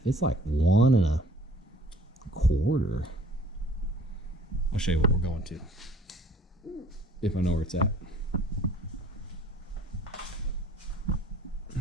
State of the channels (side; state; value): both; normal; correlation 0.53